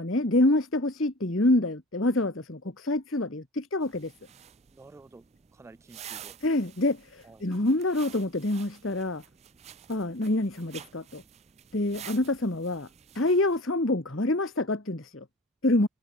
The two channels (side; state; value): both; normal; correlation 0.38